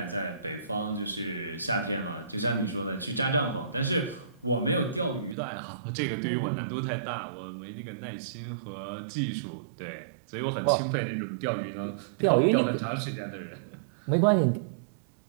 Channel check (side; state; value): left; drops out; at 5.4 s